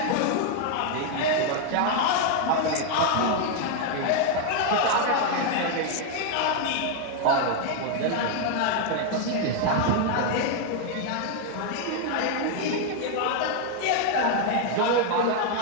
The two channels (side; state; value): both; different; correlation 0.00